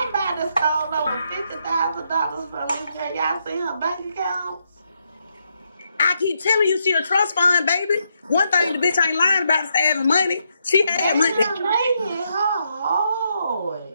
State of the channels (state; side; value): inverted; both; correlation -0.79